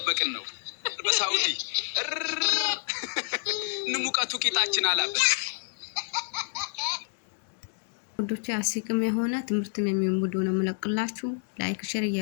ነው በሳውዲ። ንሙቀቱ ቂጣችን አላበት። ወዶቼ አስቂም የሆነ ትምህርትም የሚሆን ቪዲዮ ነው የምለቅላችሁ። ላይክ ሼር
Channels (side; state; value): right; silent; 58 dB below the other